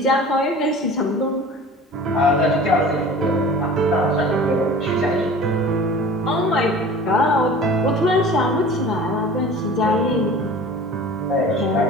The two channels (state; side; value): normal; both; correlation 0.41